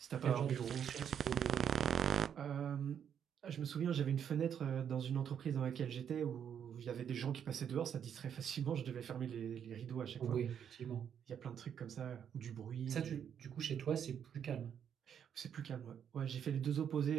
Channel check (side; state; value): left; quieter; 8.5 dB